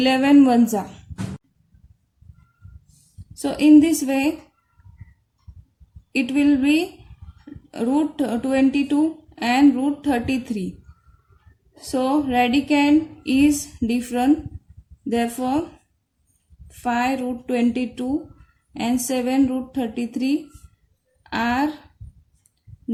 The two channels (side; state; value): both; identical; correlation 1.00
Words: ones are. So in this way it will be root 22 and root 33. So radicand is different, therefore 5 root 22 and 7 root 33 are